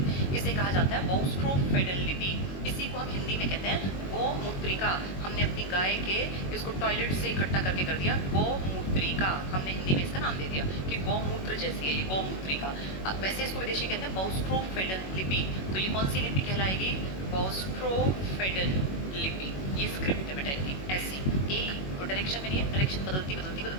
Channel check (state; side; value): late; right; 21 ms